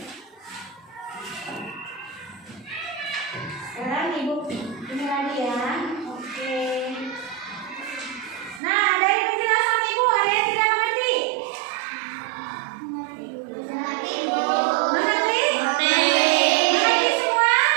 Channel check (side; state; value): left; drops out; at 8.6 s